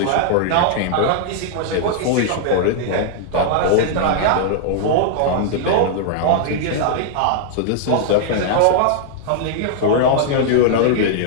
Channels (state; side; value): different; both; correlation -0.01